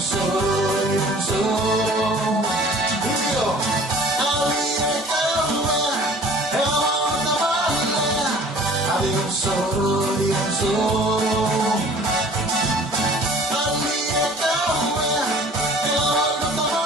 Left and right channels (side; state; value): both; normal; correlation 0.49